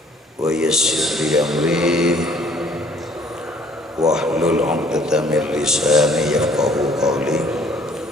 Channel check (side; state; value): both; normal; correlation 0.58